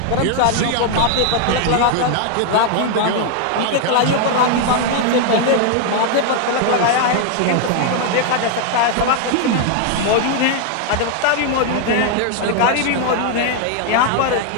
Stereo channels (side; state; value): both; different; correlation 0.00